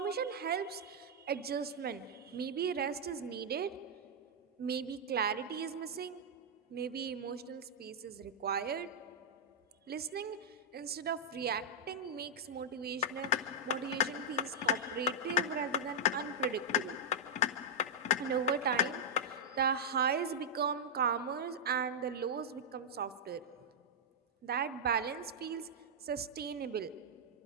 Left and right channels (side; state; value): both; normal; correlation -0.07